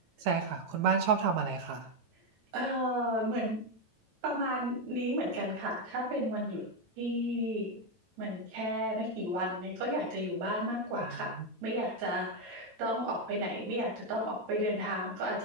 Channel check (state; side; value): late; left; 9.0 ms